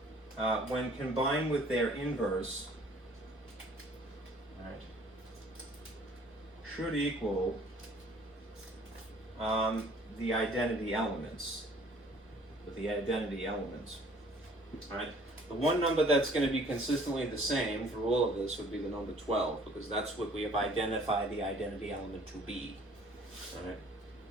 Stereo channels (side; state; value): both; normal; correlation 0.55